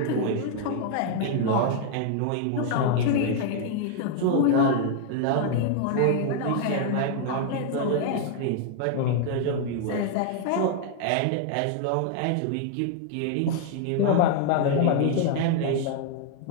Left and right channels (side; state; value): both; different; correlation 0.00